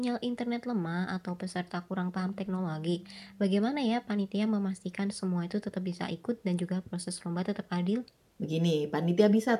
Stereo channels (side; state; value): both; identical; correlation 1.00